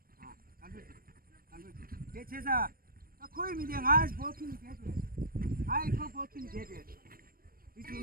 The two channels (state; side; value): late; left; 0.42 ms